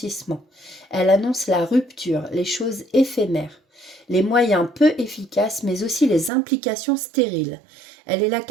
Elle annonce la rupture, les choses éphémères, les moyens peu efficaces mais aussi les implications stériles. Elle est la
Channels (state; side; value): drops out; left; at 6.3 s